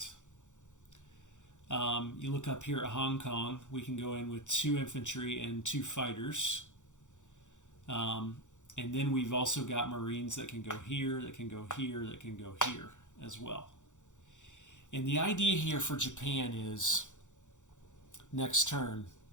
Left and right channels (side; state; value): right; late; 0.85 ms